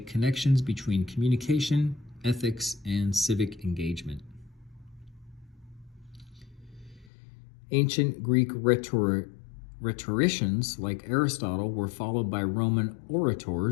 connections between communication, ethics, and civic engagement. Ancient Greek rhetoricians like Aristotle were followed by Roman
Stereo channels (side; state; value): right; drops out; at 7.1 s